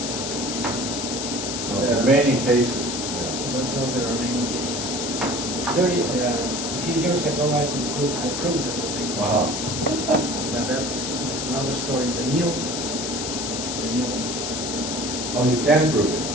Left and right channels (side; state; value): left; noise; hiss, 4 dB below the sound